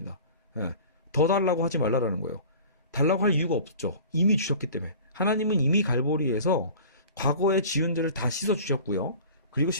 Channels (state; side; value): inverted; both; correlation -0.41